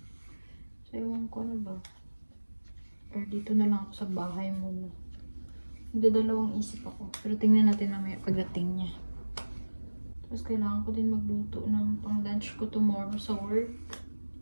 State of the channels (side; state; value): both; inverted; correlation -1.00